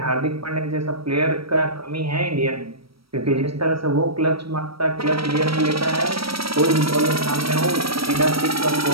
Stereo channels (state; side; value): late; left; 0.75 ms